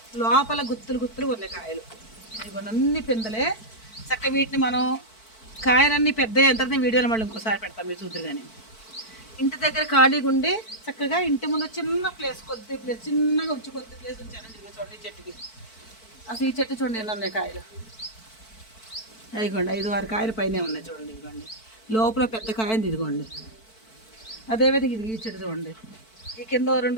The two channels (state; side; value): late; right; 4.5 ms